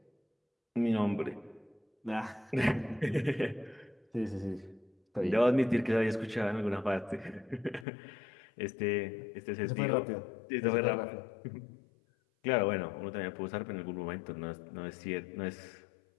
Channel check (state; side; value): drops out; right; at 7.9 s